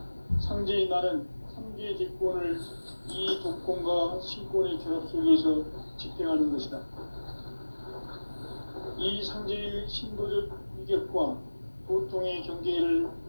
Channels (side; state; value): both; inverted; correlation -1.00